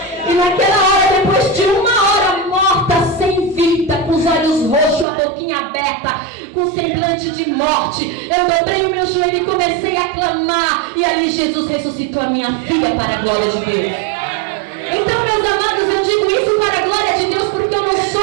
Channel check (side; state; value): left; drops out; at 5.1 s